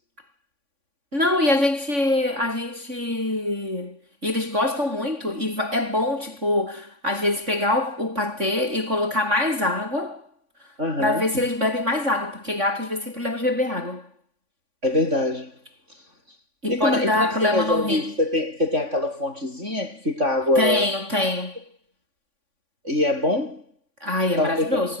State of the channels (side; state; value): left; late; 3.5 ms